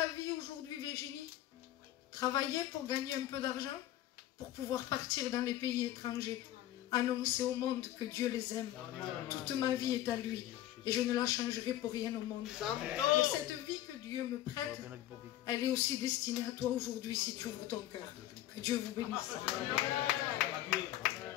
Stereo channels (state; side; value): quieter; right; 13.6 dB